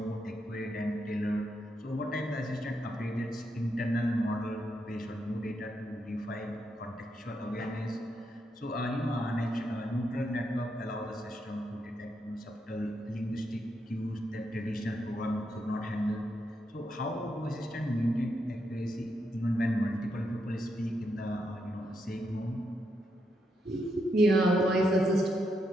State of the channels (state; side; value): normal; both; correlation 0.81